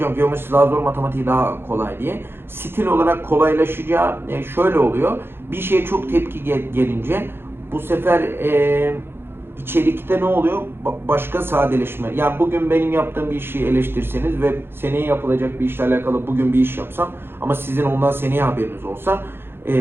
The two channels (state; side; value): late; left; 0.11 ms